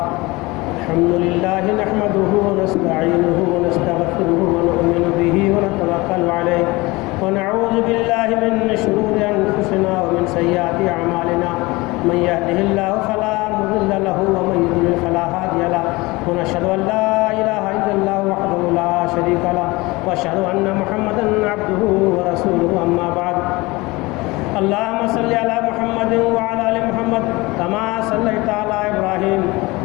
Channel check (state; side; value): quieter; right; 22.6 dB